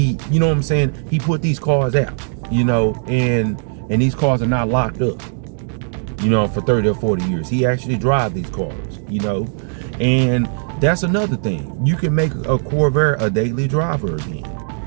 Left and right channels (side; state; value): left; silent; digital silence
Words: you know what I'm saying? He put these cars out, you know, and these cars are not locked up, you know, for 30 or 40 years. He actually drive these cars, you know, and that's another thing. You can make a Corvair a daily driver again.